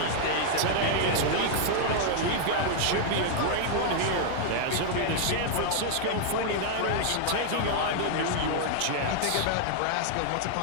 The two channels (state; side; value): different; both; correlation -0.01